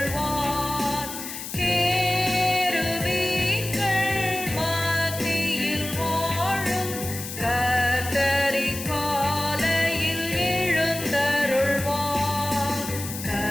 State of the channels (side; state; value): left; noise; hiss, 8 dB below the sound